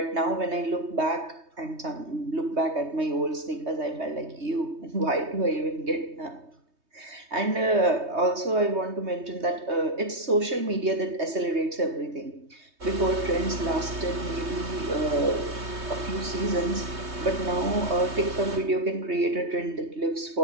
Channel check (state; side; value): late; left; 3.2 ms